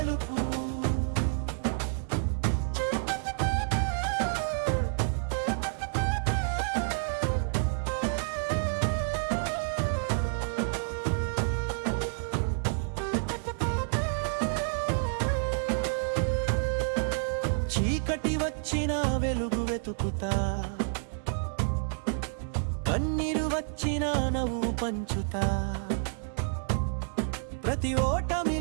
చీకటి వచ్చిన వెలుగు వెతుకుతా కన్నీరు వచ్చిన నవ్వు పంచుతా ప్రతి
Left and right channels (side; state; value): left; silent; digital silence